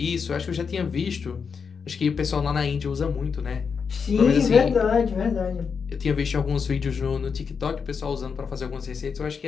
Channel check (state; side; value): quieter; right; 6.0 dB